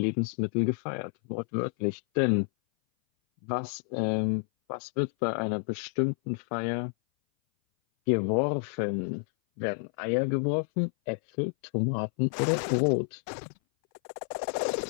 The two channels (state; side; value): silent; right; 57 dB below the other